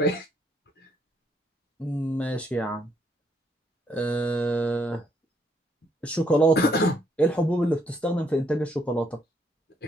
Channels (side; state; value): both; normal; correlation 0.71